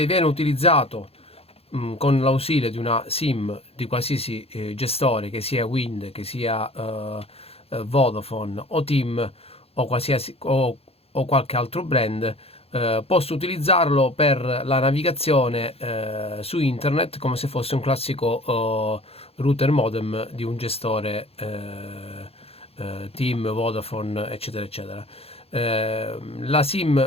viene utilizzato con l'ausilio di una SIM di qualsiasi gestore, che sia Wind, che sia Vodafone o TIM o qualsiasi o qualche altro brand. Posso utilizzarlo per la navigazione su internet come se fosse un classico router modem di un gestore TIM, Vodafone, eccetera eccetera. La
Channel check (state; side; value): late; right; 0.29 ms